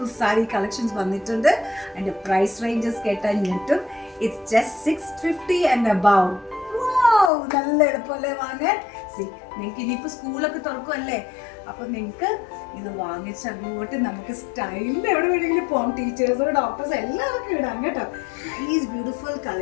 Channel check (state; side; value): drops out; right; at 7.3 s